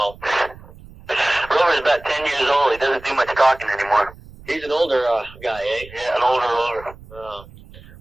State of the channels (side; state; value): right; noise; rumble, 20 dB below the sound